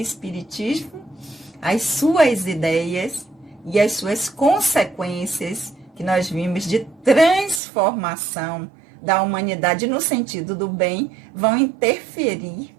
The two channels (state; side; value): drops out; left; at 7.6 s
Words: as suas ideias e as suas consequências que nós vimos de transformação da humanidade no sentido do bem, vão interferir